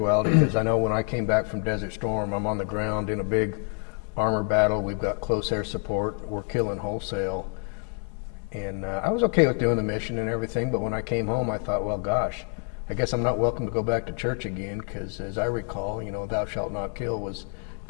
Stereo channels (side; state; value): right; quieter; 38.2 dB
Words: because I know when I came back from Desert Storm, I'm on the ground in a big armor battle. We've got close air support. We're killing wholesale. And I was okay with doing the mission and everything, but when I came home, I thought, well, gosh, I guess I'm not welcome to go back to church again, because as I recall, thou shalt not kill was